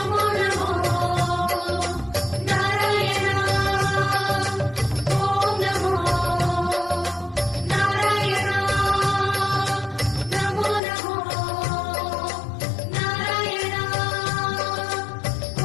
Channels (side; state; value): right; drops out; at 10.8 s